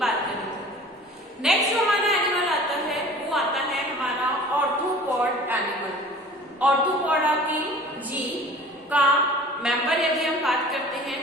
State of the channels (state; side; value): normal; both; correlation 0.44